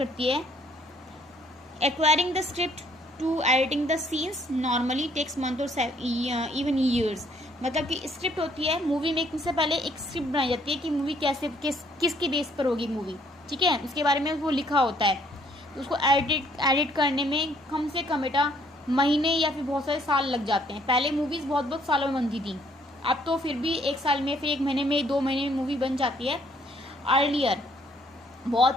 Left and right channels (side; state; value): both; normal; correlation 0.64